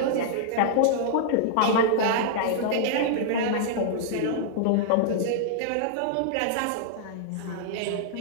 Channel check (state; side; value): different; both; correlation -0.01